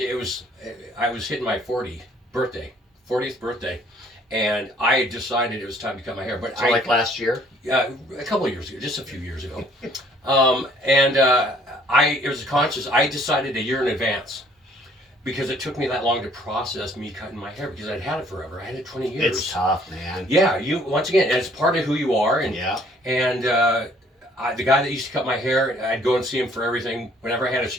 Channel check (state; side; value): normal; both; correlation 0.60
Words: I was hitting my 40th birthday. And I decided it was time to cut my hair. But like last year? Yeah, a couple of years ago, just a few years ago. It was conscious. I decided a year in advance, because it took me that long to process me cutting my hair, because I'd had it forever. I had it 20 years. It's tough, man. Yeah, once again, it's part of who you are. And the guy that used to cut my hair, I'd go and see him for everything. Whenever I had an